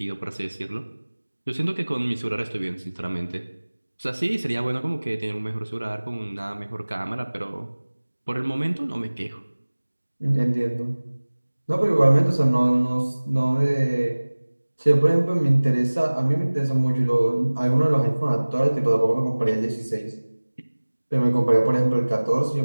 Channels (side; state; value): both; inverted; correlation -1.00